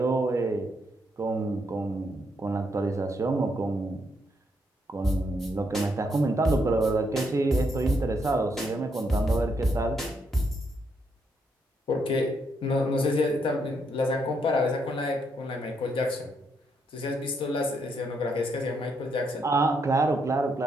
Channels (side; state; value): both; normal; correlation 0.76